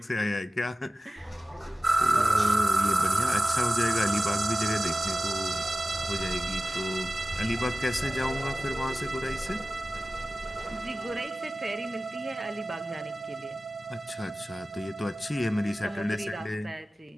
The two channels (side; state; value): both; normal; correlation 0.96